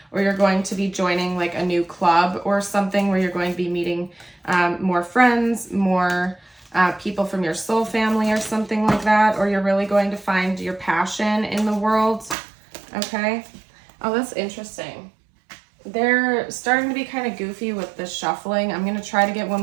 or you're going to be joining like a new club or something where you're going to be meeting more friends, more people from your soul family or something like that, or you're really going to find your passion in the world, okay? Oh, that's interesting. They're starting to be kind of goofy with the shuffling. I'm going to try to get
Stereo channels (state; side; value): drops out; left; at 12.4 s